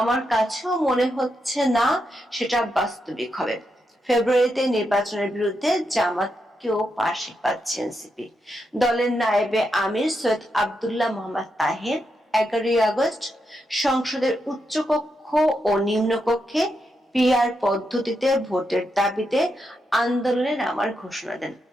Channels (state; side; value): normal; both; correlation 0.84